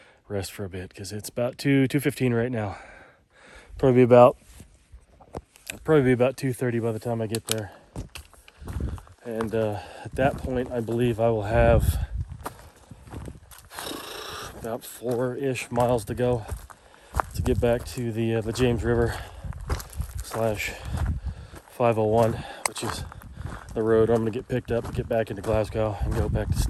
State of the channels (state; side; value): identical; both; correlation 1.00